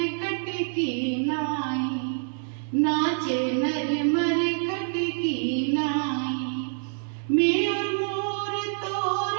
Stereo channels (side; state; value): left; silent; digital silence